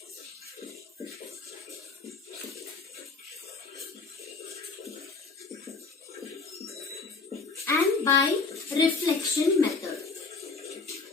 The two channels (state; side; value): quieter; right; 4.3 dB